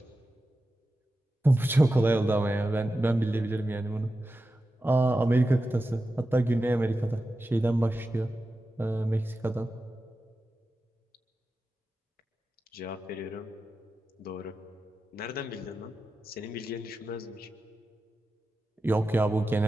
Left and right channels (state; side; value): normal; both; correlation 0.92